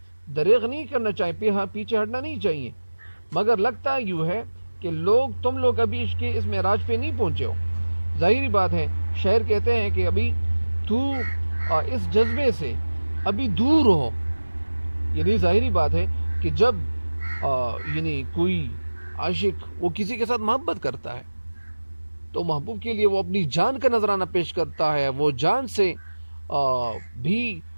پیچھے ہٹنا نہیں چاہیے. مگر لگتا یوں ہے کہ تم لوگ ابھی اس معراج پہ نہیں پہنچے ہو. ظاہری بات ہے، شاعر کہتے ہیں کہ ابھی تو اس جذبے سے ابھی دور ہو. یعنی ظاہری بات ہے کہ جب یعنی کوئی عاشق وہ کسی کے ساتھ محبت کرتا ہے تو محبوب کے لیے وہ اپنی جان کا نذرانہ پیش کرتا ہے، وہ جان سے بھی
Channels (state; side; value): inverted; both; correlation -1.00